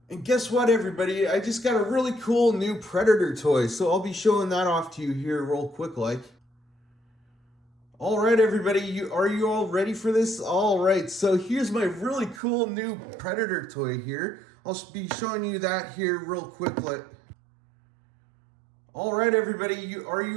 And guess what, everybody? I just got a really cool new Predator toy, so I'll be showing that off to you here real quick like. All right, everybody, are you all ready for this? All right, so here's my really cool new Predator toy here. I'll be showing you that here real quick like. All right, everybody, are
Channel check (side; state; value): left; drops out; at 12.4 s